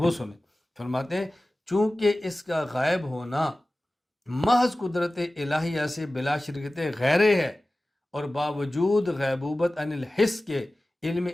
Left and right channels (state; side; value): normal; both; correlation 0.96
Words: سنیں۔ فرماتے ہیں چونکہ اس کا غائب ہونا محض قدرت الہیہ سے بلا شرکت غیرے ہے، اور باوجود غیبوبت عن الحس کے علم